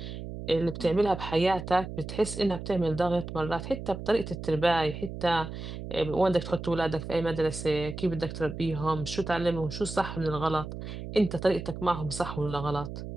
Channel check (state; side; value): noise; right; hum, 8 dB below the sound